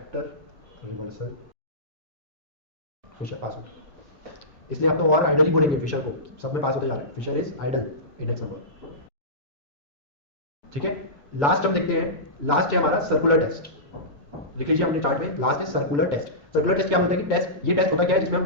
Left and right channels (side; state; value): both; normal; correlation -0.19